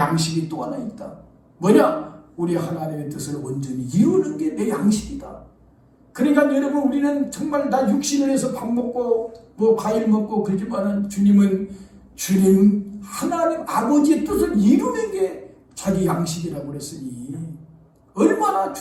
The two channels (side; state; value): both; identical; correlation 1.00